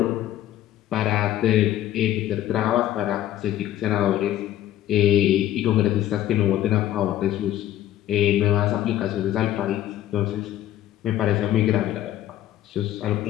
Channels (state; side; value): quieter; right; 12.8 dB